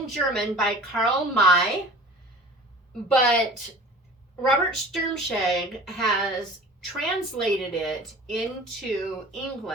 German by Karl May, but Robert Sturmscheg has translated it into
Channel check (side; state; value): both; normal; correlation 0.43